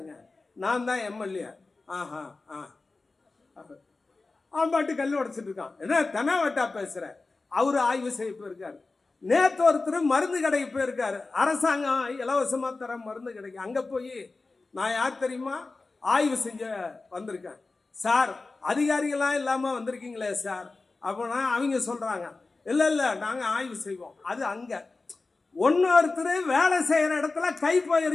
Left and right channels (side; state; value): right; quieter; 3.6 dB